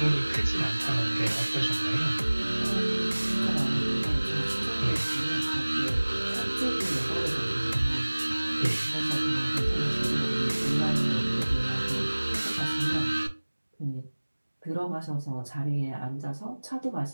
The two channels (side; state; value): both; inverted; correlation -1.00